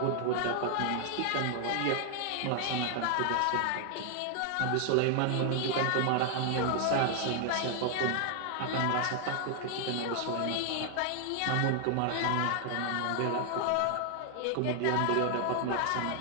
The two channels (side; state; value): both; different; correlation 0.00